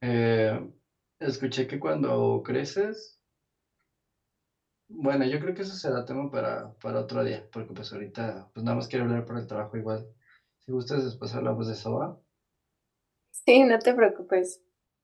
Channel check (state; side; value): identical; both; correlation 1.00